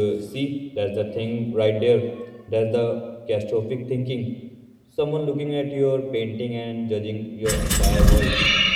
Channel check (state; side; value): identical; both; correlation 1.00